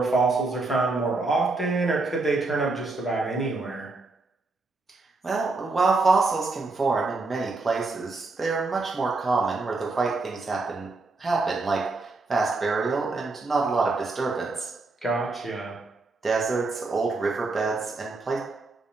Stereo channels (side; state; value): left; quieter; 3.5 dB